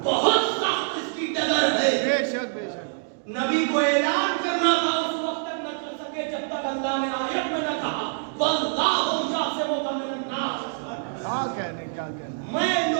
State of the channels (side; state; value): left; silent; digital silence